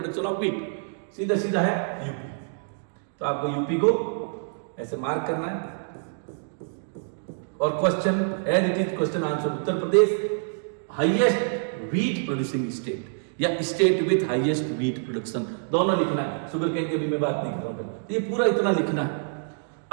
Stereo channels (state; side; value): silent; left; digital silence